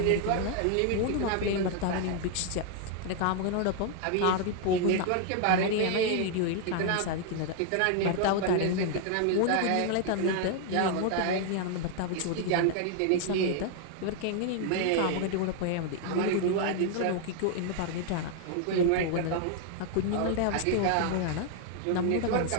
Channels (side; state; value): both; different; correlation 0.00